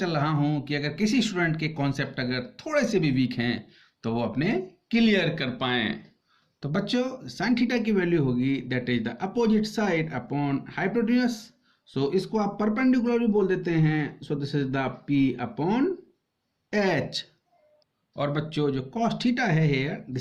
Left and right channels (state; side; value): identical; both; correlation 1.00